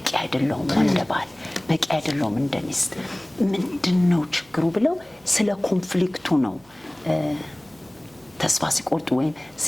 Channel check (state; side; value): noise; right; hum, 30 dB below the sound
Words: አይደለሁም እንደ ባል፣ በቂ አይደለሁም እንደ ሚስት፣ ምንድነው ችግሩ ብለው ስለ ኮንፍሊክቱ ነው ተስፋ ሲቆርጡ ወይም